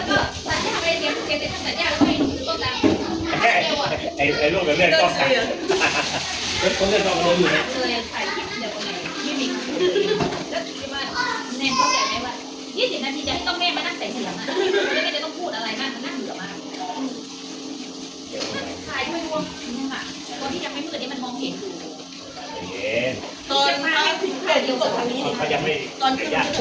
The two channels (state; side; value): identical; both; correlation 1.00